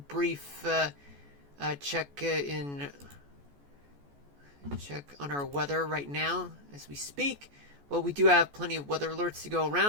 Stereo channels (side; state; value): left; late; 14 ms